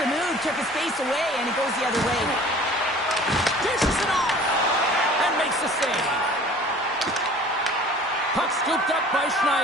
move took his face away, and it goes the other way. Dishes it off and makes the save. Puck scooped up by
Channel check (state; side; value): normal; both; correlation 0.47